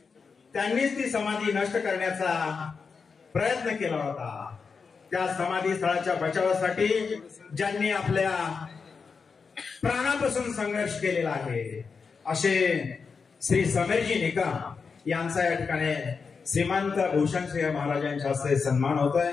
त्यांनीच ती समाधी नष्ट करण्याचा प्रयत्न केला होता. त्या समाधी स्थळाच्या बचावासाठी ज्यांनी आपल्या प्राणापासून संघर्ष केलेला आहे असे श्री समीरजी निकम यांचा या ठिकाणी श्रीमंत भूषणसिंह महाराजांच्या हस्ते सन्मान होतोय.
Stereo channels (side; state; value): right; quieter; 5.3 dB